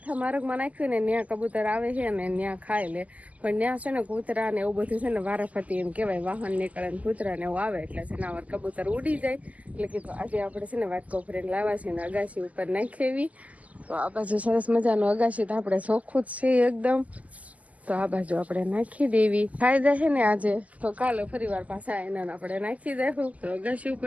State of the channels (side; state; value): left; late; 0.074 ms